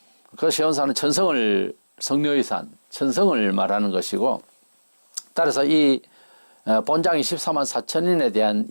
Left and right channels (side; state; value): both; inverted; correlation -1.00